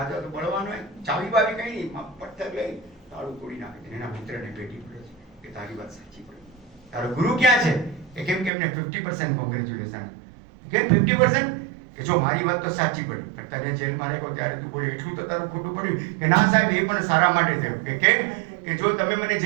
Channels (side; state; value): left; drops out; at 8.5 s